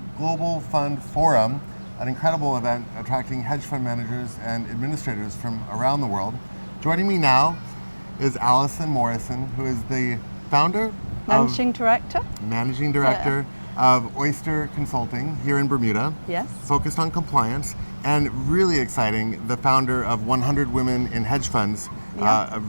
Global Fund Forum, an incredible event attracting hedge fund managers and administrators from around the world. Joining me now is Alison Morrison, who is the founder, Managing Director of Oyster Consulting here in Bermuda. Yes. Focused on compliance, and really exciting, the founder of 100 Women in Hedge Funds, a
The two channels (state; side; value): inverted; both; correlation -1.00